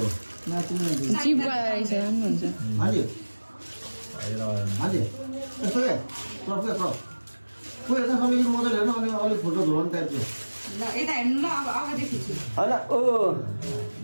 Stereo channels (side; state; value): both; inverted; correlation -1.00